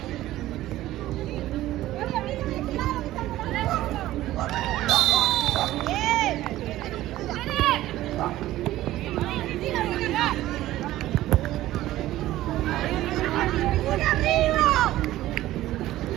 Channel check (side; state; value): left; quieter; 15.2 dB